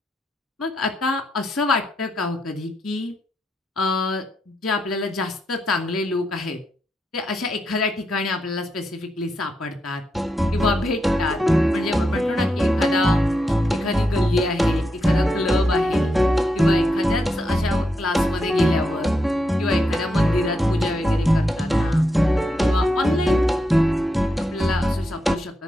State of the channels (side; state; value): both; normal; correlation 0.83